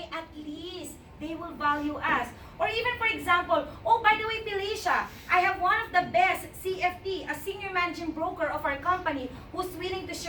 at least, they will value us. Or even, for example, oh, by the way, Felicia, I have one of the best CFT, a senior managing broker of our company, who's willing to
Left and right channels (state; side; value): identical; both; correlation 1.00